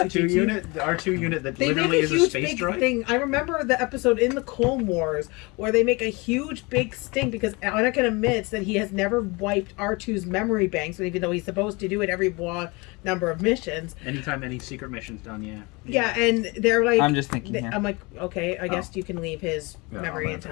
unit, the R2 unit that They literally make a is a huge space big droid. thing. I remember the episode in the Clone Wars where they make a huge big stink because Anakin admits that he has never wiped R2's memory banks, even though he's supposed to do it every number of missions. Anytime any secret mission's done, yeah. Yeah, and they're like, I'm just thinking here. I'm like, okay, I guess you can leave his Yeah, memory I'll let it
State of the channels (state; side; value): quieter; right; 26.5 dB